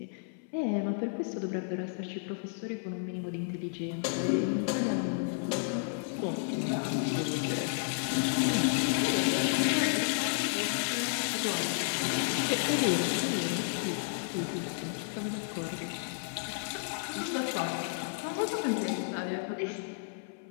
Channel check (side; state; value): right; silent; 56 dB below the other